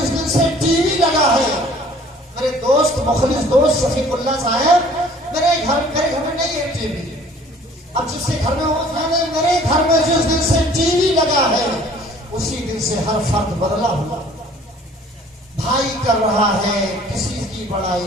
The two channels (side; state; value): both; normal; correlation 0.53